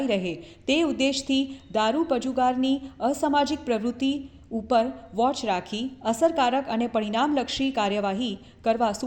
રહે તે ઉદ્દેશથી દારૂ પજુગારની અસામાજિક પ્રવૃત્તિ ઉપર વોચ રાખી અસરકારક અને પરિણામલક્ષી કાર્યવાહી કરવા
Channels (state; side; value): identical; both; correlation 1.00